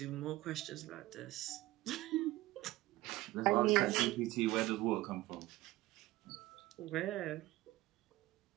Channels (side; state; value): left; quieter; 17.9 dB